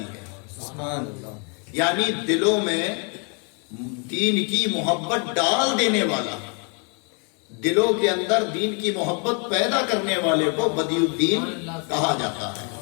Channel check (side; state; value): right; quieter; 37.0 dB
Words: ہے، سبحان اللہ۔ یعنی دلوں میں دین کی محبت ڈال دینے والا، دلوں کے اندر دین کی محبت پیدا کرنے والے کو بدیع الدین کہا جاتا ہے۔